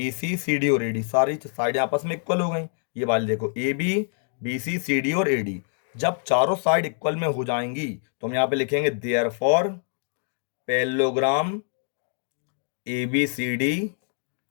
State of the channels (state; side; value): silent; right; digital silence